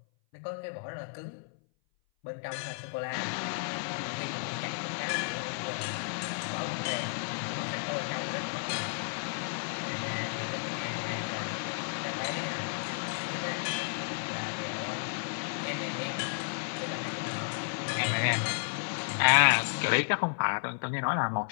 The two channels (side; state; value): right; silent; 56 dB below the other